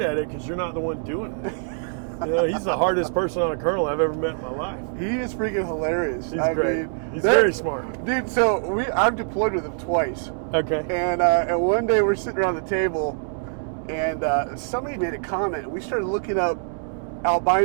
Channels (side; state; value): left; silent; digital silence